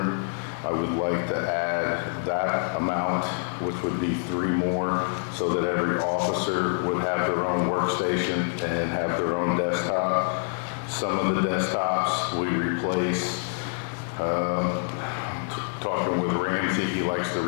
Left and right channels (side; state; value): right; silent; digital silence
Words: I would like to add that amount, which would be 3 more, so that every officer would have their own workstation and have their own desktop. Some of the desktops we replace. Talking with Ramsey, he likes to